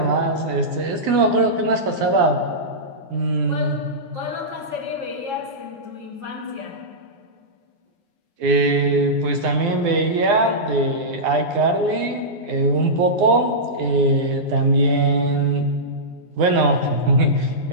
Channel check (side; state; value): left; late; 9.7 ms